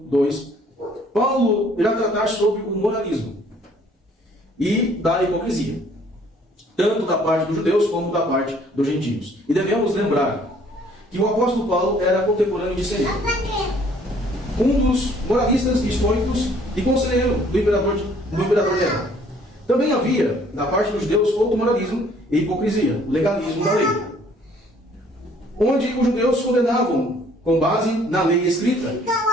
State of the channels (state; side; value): normal; both; correlation 0.59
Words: 2, Paulo irá tratar sobre o moralismo e da hipocrisia, tanto da parte dos judeus como da parte dos gentios. E devemos lembrar que o apóstolo Paulo era contemporâneo de Sêneca, um dos moralistas estoicos e conselheiro do imperador Nero. Também havia, da parte dos judeus, outro moralismo e hipocrisia, o legalismo da lei, onde os judeus condenavam, com base na lei escrita,